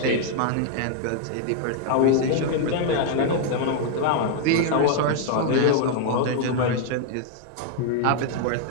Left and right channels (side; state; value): both; different; correlation -0.01